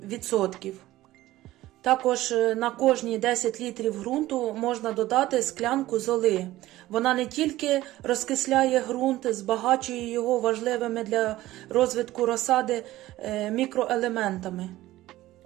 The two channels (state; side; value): quieter; left; 16.1 dB